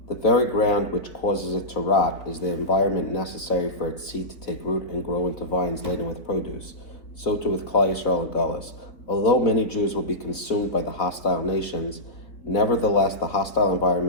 the very ground which causes it to rot is the environment necessary for its seed to take root and grow into vines laden with produce. So too with Klal Yisrael and Galus. Although many Jews will be consumed by the hostile nations, nevertheless the hostile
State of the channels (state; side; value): late; right; 4.0 ms